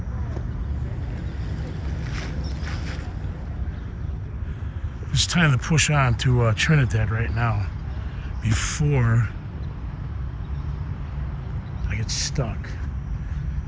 It's time to push on to Trinidad right now before I get stuck.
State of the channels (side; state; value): both; identical; correlation 1.00